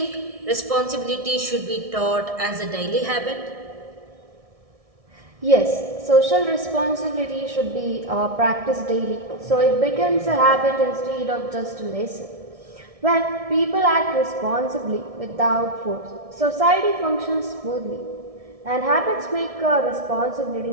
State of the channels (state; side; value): late; left; 1.6 ms